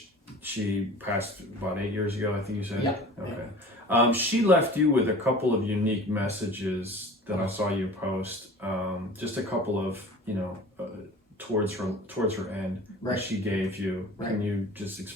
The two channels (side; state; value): both; normal; correlation 0.41